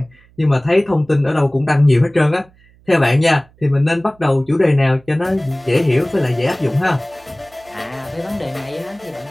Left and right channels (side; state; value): right; noise; hum, 29 dB below the sound